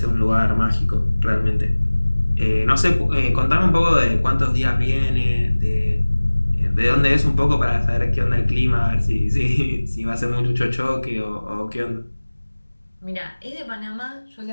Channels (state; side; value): inverted; both; correlation -1.00